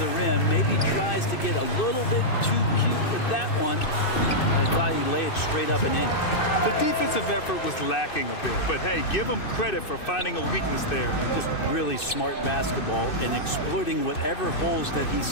rim. Maybe tries to get a little bit too cute with that one. I thought he laid it straight up and in. The defensive effort was lacking a bit, but hey, give him credit for finding a weakness there. Just really smart basketball and exploiting whatever holes that he's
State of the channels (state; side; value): late; right; 2.6 ms